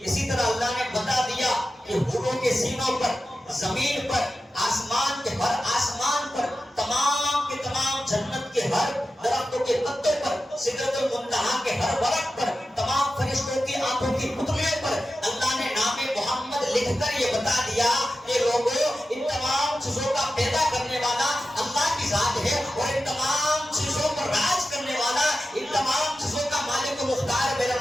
اسی طرح اللہ نے بتا دیا کہ حوروں کے سینوں پر، زمین پر، آسمان کے ہر آسمان پر، تمام کے تمام جنت کے ہر درختوں کے پتوں پر، سدرۃ المنتہا کے ہر ورق پر، تمام فرشتوں کی آنکھوں کی پتلیوں پر اللہ نے نام محمد لکھ کر یہ بتا دیا کہ لوگوں ان تمام چیزوں کا پیدا کرنے والا اللہ کی ذات ہے اور ان تمام چیزوں پر راج کرنے والا، ان تمام چیزوں کا مالک و مختار میرا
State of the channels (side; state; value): both; normal; correlation 0.92